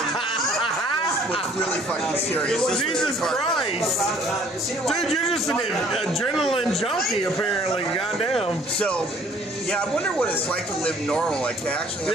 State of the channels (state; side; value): normal; both; correlation 0.58